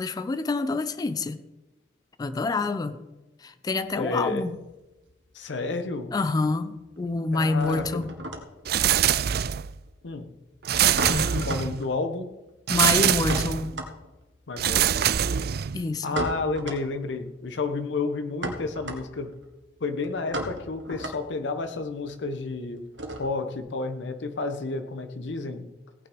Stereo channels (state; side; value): normal; both; correlation 0.30